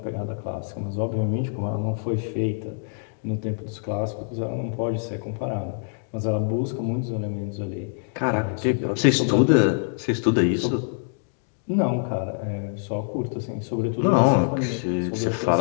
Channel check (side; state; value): right; silent; digital silence